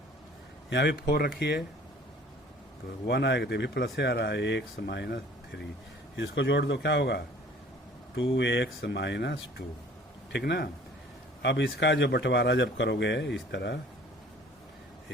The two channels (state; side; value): normal; both; correlation 0.51